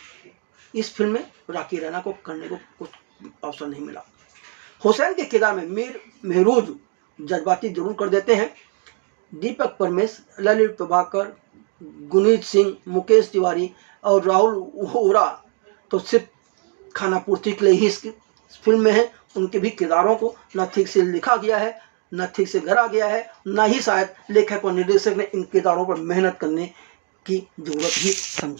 इस फिल्म में रॉकी रैना को करने को कुछ अवसर नहीं मिला। हुसैन के किरदार में मीर महरूज जज्बाती जरूर कर देते हैं। दीपक परमेश, ललित प्रभाकर, गुनीत सिंह, मुकेश तिवारी और राहुल ओरा तो सिर्फ खाना पूर्ति के लिए ही इस फिल्म में है। उनके भी किरदारों को न ठीक से लिखा गया है, न ठीक से गढ़ा गया है, न ही शायद लेखक और निर्देशक ने इन किरदारों पर मेहनत करने की जरूरत ही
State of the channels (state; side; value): quieter; left; 37.9 dB